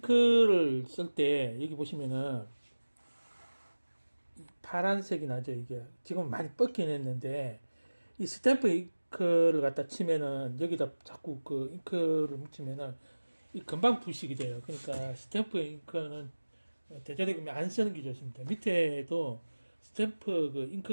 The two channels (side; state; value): both; inverted; correlation -1.00